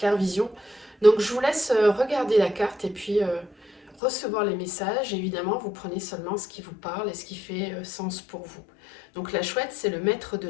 vision. Donc je vous laisse regarder la carte et puis recevoir les messages. Évidemment, vous prenez seulement ce qui vous parle et ce qui fait sens pour vous. Donc la chouette, c'est le maître de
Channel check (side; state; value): right; drops out; at 4.0 s